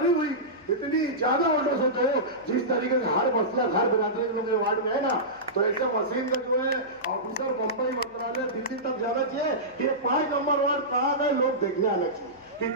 हुई। इतनी ज्यादा ऑर्डर से तो जिस तरीके से हर मसला हर बिरादरी के लोग वार्ड में है ना, तो ऐसे मशीन का जो है ऑफिसर बंबई मंत्रालय दिल्ली तक जाना चाहिए कि ये 5 नंबर वार्ड कहाँ गए, लोग देखने आना चाहिए।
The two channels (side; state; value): left; noise; hum, 29 dB below the sound